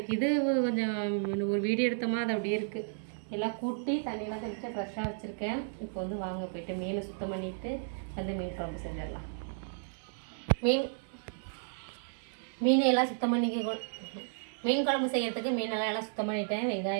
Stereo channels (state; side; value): silent; left; digital silence